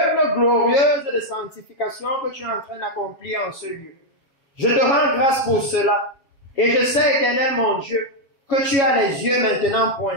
glorieuse de sanctification que tu es en train d'accomplir en ce lieu. Je te rends grâce pour cela. Et je sais, Éternel mon Dieu, que tu as les yeux maintenant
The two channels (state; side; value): late; right; 7.3 ms